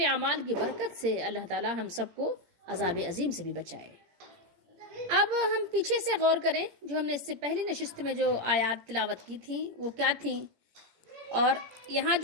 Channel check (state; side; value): late; left; 17 ms